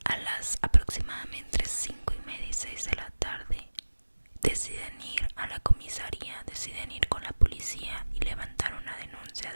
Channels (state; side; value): inverted; both; correlation -1.00